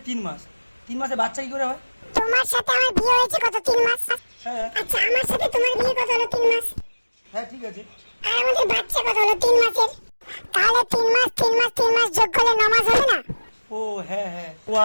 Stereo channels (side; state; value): both; inverted; correlation -1.00